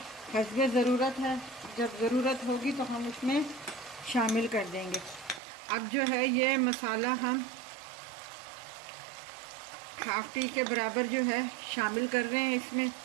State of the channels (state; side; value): drops out; left; at 5.4 s